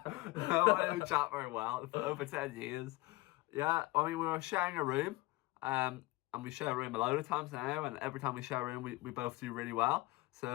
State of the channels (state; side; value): quieter; right; 20.8 dB